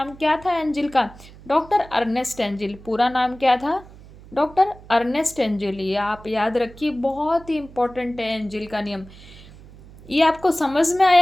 क्या था एंजिल का? डॉक्टर अर्नेस्ट एंजिल, पूरा नाम क्या था? Doctor Ernest Engel. ये आप याद रखिए, बहुत ही इंपॉर्टेंट है एंजिल का नियम। ये आपको समझ में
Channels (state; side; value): noise; right; hum, 20 dB below the sound